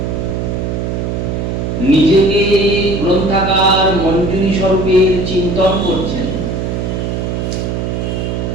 নিজেকে গ্রন্থাকার মঞ্জুরি স্বরূপের চিন্তন করছেন।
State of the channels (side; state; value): right; noise; hum, 2 dB below the sound